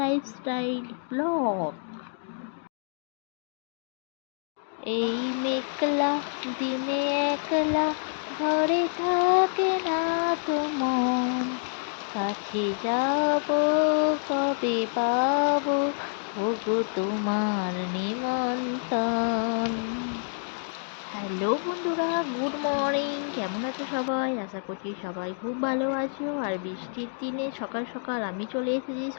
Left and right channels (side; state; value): right; silent; digital silence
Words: Blog. এই মেঘলা দিনে একলা ঘরে থাকে না তো মন, কাছে যাব কবে পাবো ওগো তোমার নিমন্ত্রণ। হ্যালো বন্ধুরা, গুড মর্নিং। কেমন আছো সবাই? আশা করছি সবাই খুব ভালো আছো। আর বৃষ্টির দিনে সকাল সকাল আমি চলে এসেছি